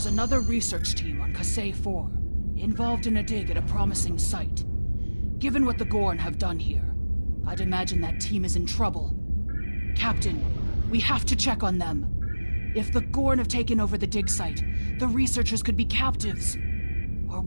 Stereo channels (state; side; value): inverted; both; correlation -1.00